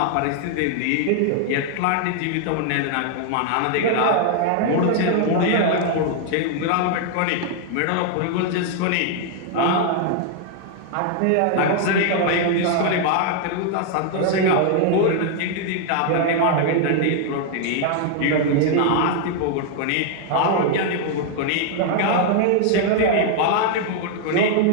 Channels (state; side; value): different; both; correlation 0.00